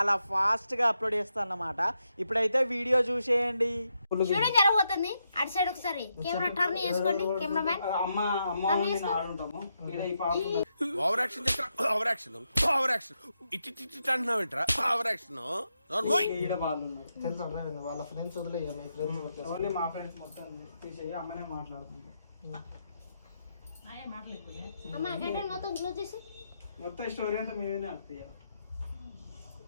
ఫాస్ట్ గా అప్లోడ్ చేస్తాను అన్నమాట. ఇప్పుడైతే వీడియో చూసేయండి. షూటింగ్ జరగబోతుంది. అటు సైడ్ ఒకసారి కెమెరా టర్న్ చేసుకోండి. కెమెరామెన్ ఓవర్ యాక్షన్ అంటున్నావేంట్రా? ఓవర్ యాక్షన్ వాళ్ళ ఫ్రెండ్స్ వదిలే మా ఫ్రెండ్స్ మొత్తం తీసేయి. అమ్మనే మాట్లాడుతుంది. మొత్తం స్టోరీ అంతా మేమే అర్థం.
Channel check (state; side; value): inverted; both; correlation -0.83